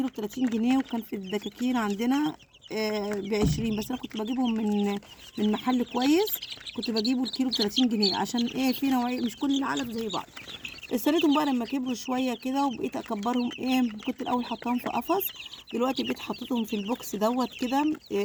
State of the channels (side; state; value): both; identical; correlation 1.00